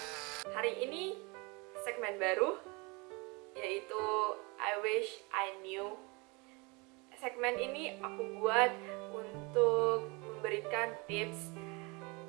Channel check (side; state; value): left; quieter; 28.2 dB